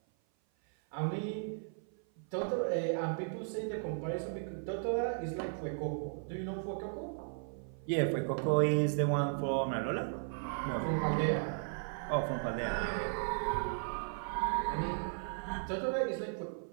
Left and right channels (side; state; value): left; silent; 54 dB below the other